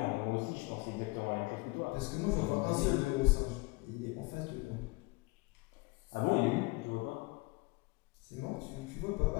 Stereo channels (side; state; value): right; quieter; 24.3 dB